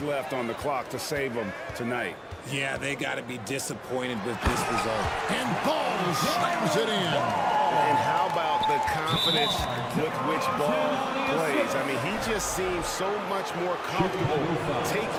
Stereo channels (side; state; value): both; identical; correlation 1.00